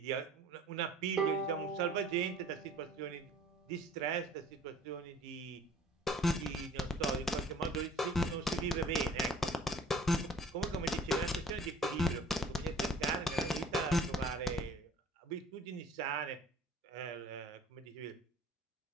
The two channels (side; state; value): both; normal; correlation 0.50